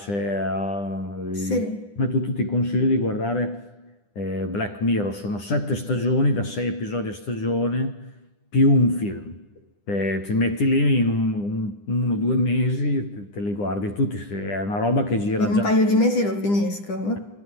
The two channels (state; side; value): late; right; 9.9 ms